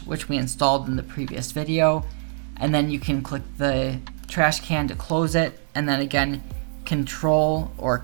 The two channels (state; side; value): silent; left; digital silence